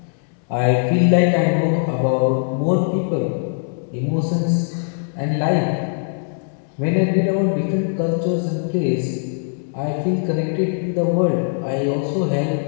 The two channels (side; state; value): right; silent; digital silence